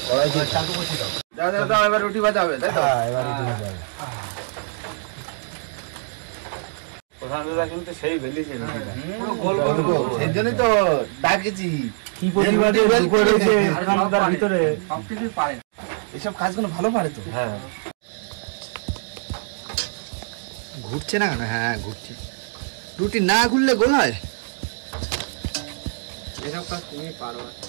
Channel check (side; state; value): left; silent; digital silence